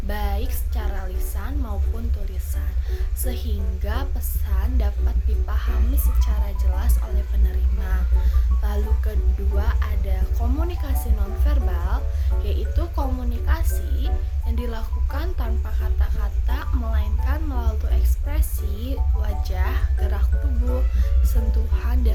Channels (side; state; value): both; identical; correlation 1.00